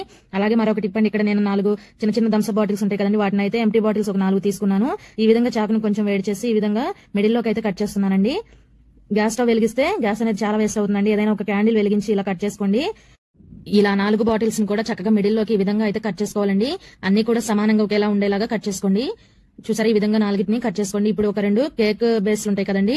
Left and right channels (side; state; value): both; identical; correlation 1.00